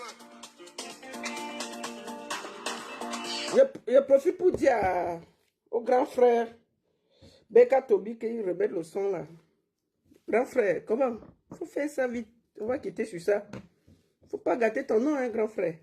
Je profite pour dire au grand frère Beka Tobi qu'il remet le son là. Grand frère, comment? Faut faire ça vite. On va quitter sur ça. Faut pas gâter ton nom, hein, grand frère.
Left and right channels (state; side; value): identical; both; correlation 1.00